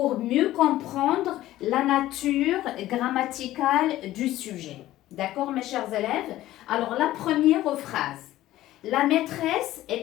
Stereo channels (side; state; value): right; quieter; 14.9 dB